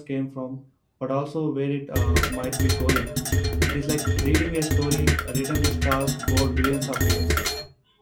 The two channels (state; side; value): identical; both; correlation 1.00